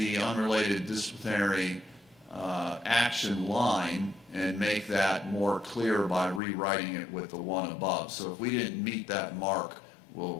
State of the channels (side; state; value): right; drops out; at 6.4 s